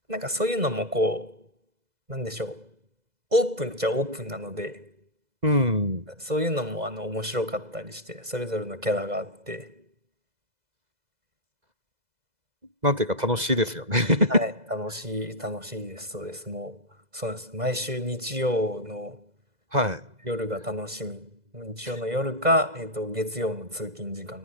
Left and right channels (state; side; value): late; left; 2.0 ms